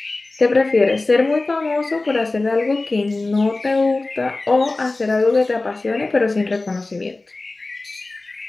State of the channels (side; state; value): right; quieter; 3.2 dB